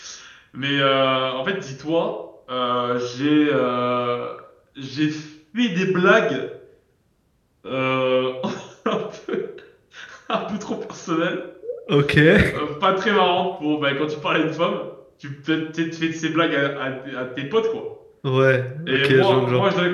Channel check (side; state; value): both; identical; correlation 1.00